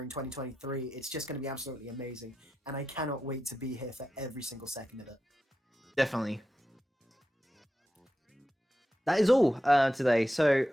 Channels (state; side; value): normal; both; correlation 0.90